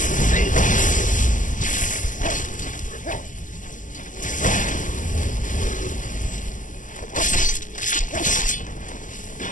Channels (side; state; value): right; late; 0.37 ms